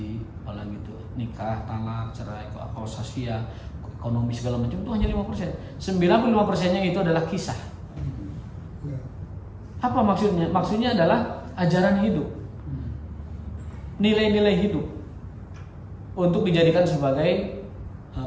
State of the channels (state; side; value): identical; both; correlation 1.00